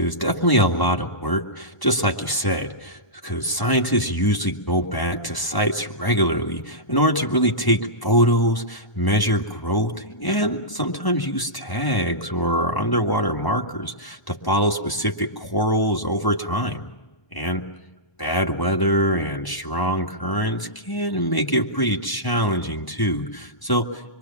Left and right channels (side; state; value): right; late; 1.0 ms